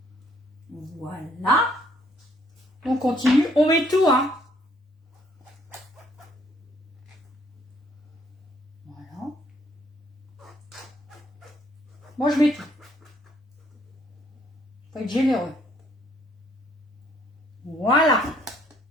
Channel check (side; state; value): both; normal; correlation 0.66